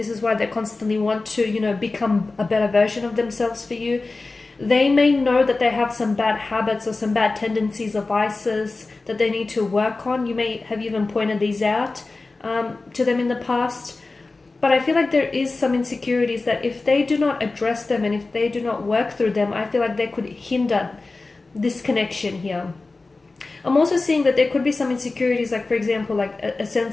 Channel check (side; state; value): right; quieter; 3.5 dB